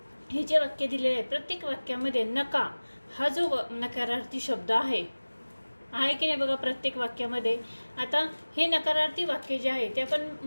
हे जे वाक्य दिलेले आहे प्रत्येक वाक्यामध्ये नका हा जो नकारार्थी शब्द आहे की नाही बघा प्रत्येक वाक्यामध्ये। आता हे नकारार्थी वाक्य जे आहे ते आपण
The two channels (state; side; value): inverted; both; correlation -1.00